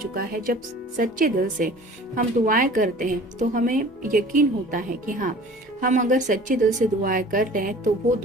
है। जब सच्चे दिल से हम दुआएं करते हैं तो हमें यकीन होता है कि हाँ, हम अगर सच्चे दिल से दुआएं कर रहे हैं तो वो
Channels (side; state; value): both; normal; correlation 0.46